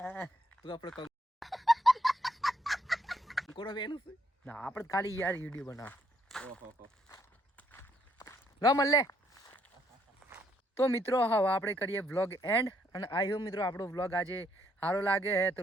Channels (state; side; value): normal; both; correlation 0.71